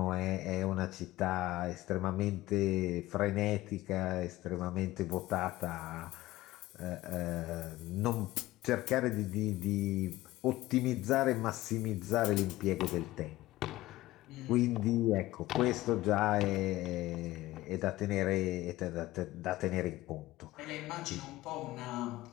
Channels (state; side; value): quieter; right; 17.1 dB